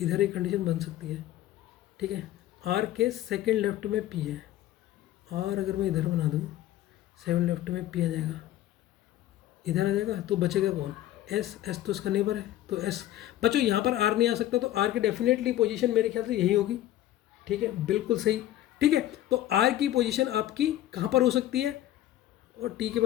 इधर एक कंडीशन बन सकती है, ठीक है। आर के सेकंड लेफ्ट में पी है, और अगर मैं इधर बना दूँ, सेवन लेफ्ट में पी आ जाएगा, इधर आ जाएगा, तो बचेगा कौन, एस। एस तो इसका नेबर है, तो एस। बच्चों यहाँ पर आर नहीं आ सकता, तो आर की डेफिनेटली पोजीशन मेरे ख्याल से यही होगी, ठीक है, बिल्कुल सही, ठीक है। तो आर की पोजीशन आपकी कहाँ पर हो सकती है, और टी के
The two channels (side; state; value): right; quieter; 13.6 dB